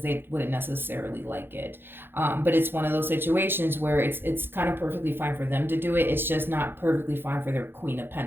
they wouldn't necessarily like it. But it's one of those situations where it's kind of perfectly fine for them to do it. It's just not perfectly fine for their Queen of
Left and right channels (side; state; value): left; late; 0.10 ms